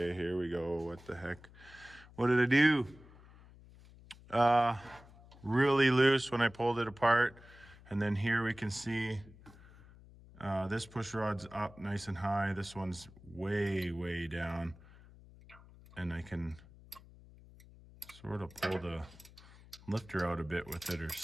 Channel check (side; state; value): left; noise; hum, 22 dB below the sound